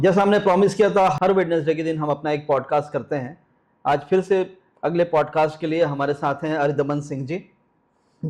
हमने प्रॉमिस किया था, हर वेडनेसडे के दिन हम अपना एक पॉडकास्ट करते हैं। आज फिर से अगले पॉडकास्ट के लिए हमारे साथ हैं अरिदमन सिंह जी,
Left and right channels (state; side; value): identical; both; correlation 1.00